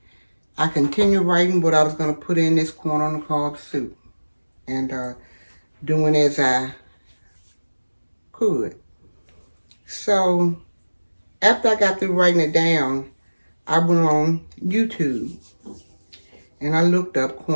I continued writing what I was going to put in this corn on the cob soup and doing as I could. So after I got through writing it down, I went on YouTube and I looked up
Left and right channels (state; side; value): inverted; both; correlation -1.00